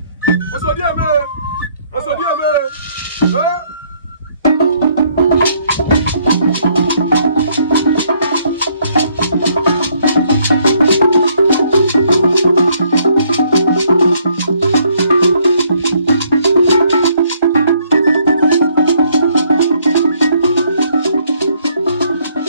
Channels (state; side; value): inverted; both; correlation -0.68